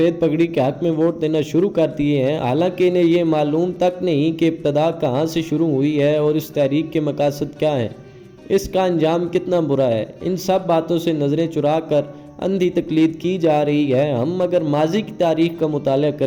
پگڑی کے حق میں ووٹ دینا شروع کر دیے ہیں، حالانکہ انہیں یہ معلوم تک نہیں کہ ابتدا کہاں سے شروع ہوئی ہے اور اس تحریک کے مقاصد کیا ہیں، اس کا انجام کتنا برا ہے۔ ان سب باتوں سے نظریں چرا کر اندھی تقلید کی جا رہی ہے۔ ہم اگر ماضی کی تاریخ کا مطالعہ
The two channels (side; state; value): both; identical; correlation 1.00